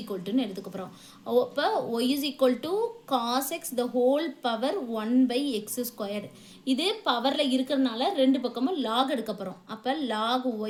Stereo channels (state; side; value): identical; both; correlation 1.00